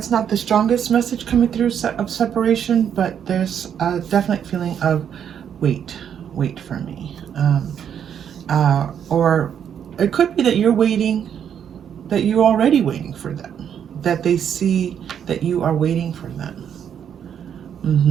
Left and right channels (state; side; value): quieter; left; 8.6 dB